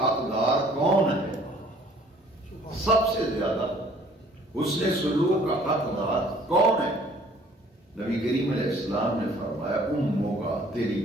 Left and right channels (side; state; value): both; normal; correlation 0.56